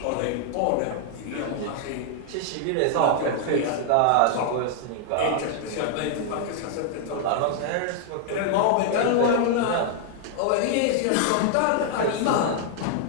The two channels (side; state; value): both; different; correlation 0.00